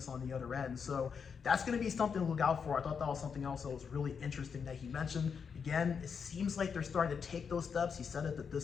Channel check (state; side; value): quieter; right; 6.3 dB